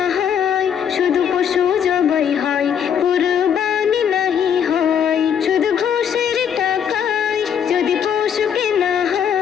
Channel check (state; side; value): quieter; right; 8.2 dB